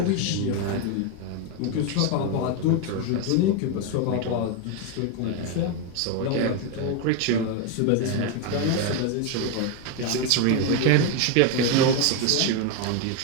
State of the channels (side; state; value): both; different; correlation 0.02